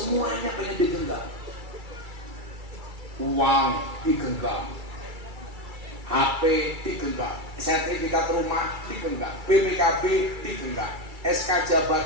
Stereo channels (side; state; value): left; late; 2.3 ms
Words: pengen digenggam. Uang digenggam, HP digenggam, sertifikat rumah digenggam, BPKB digenggam, SK